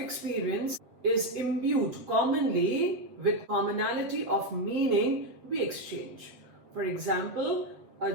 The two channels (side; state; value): left; late; 8.0 ms